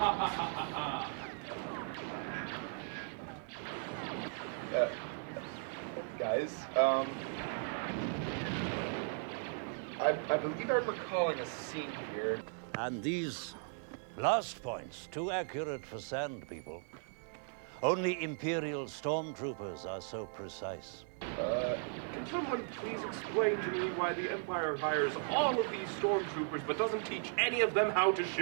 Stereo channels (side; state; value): left; silent; 53 dB below the other